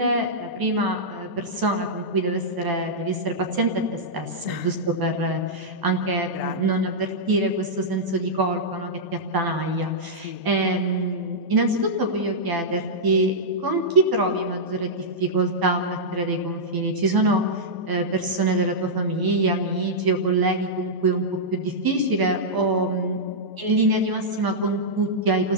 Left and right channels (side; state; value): left; late; 1.0 ms